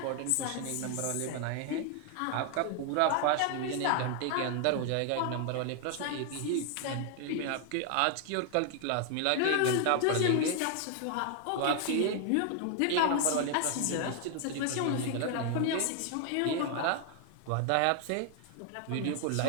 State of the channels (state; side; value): different; both; correlation 0.00